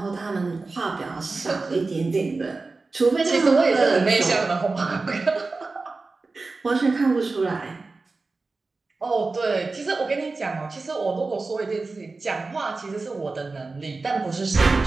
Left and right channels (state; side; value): quieter; left; 3.7 dB